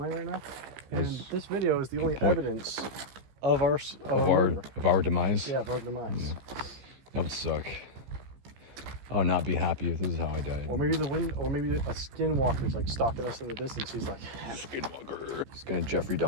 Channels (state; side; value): late; left; 15 ms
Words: lion right now. And this video is the only evidence of our demise. Yeah, of our demise. That would suck. I would not be happy if this is how I died. Or maybe a skinwalker's like stalking us in the distance. He's like, Skinwalker. He's gonna Jeffrey